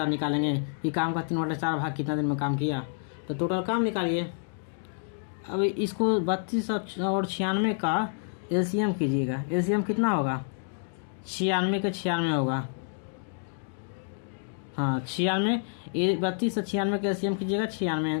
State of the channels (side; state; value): right; silent; digital silence